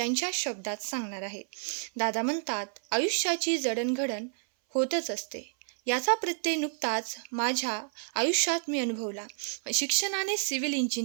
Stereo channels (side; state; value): left; silent; 57 dB below the other